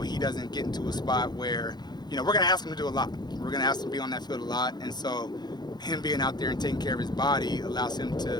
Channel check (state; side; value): late; right; 0.20 ms